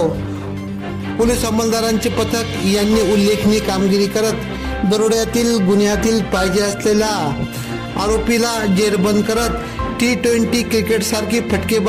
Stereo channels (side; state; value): both; identical; correlation 1.00